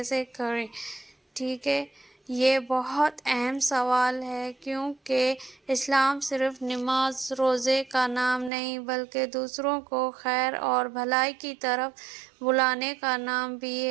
کریں، ٹھیک ہے؟ یہ بہت اہم سوال ہے، کیونکہ اسلام صرف نماز روزے کا نام نہیں بلکہ دوسروں کو خیر اور بھلائی کی طرف بلانے کا نام بھی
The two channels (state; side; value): drops out; left; at 8.5 s